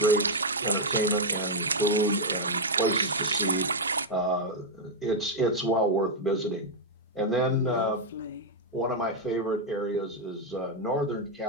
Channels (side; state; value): both; normal; correlation -0.01